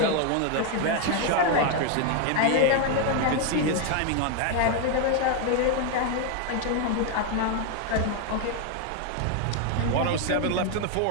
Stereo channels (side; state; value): both; different; correlation 0.01